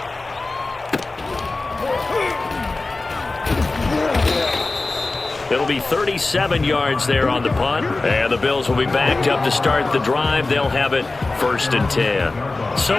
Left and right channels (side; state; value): right; quieter; 3.4 dB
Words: It'll be 37 yards there on the punt. And the Bills will be backed up to start the drive. They'll have it 1st and 10. So